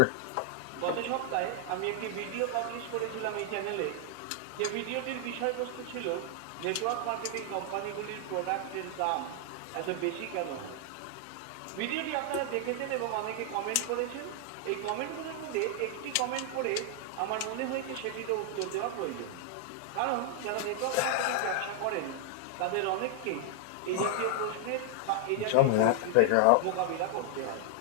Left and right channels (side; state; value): both; different; correlation 0.00